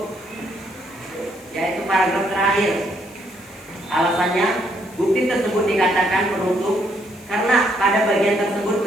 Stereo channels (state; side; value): noise; left; hiss, 24 dB below the sound